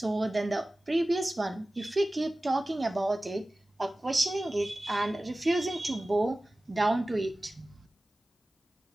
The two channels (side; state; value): both; normal; correlation 0.97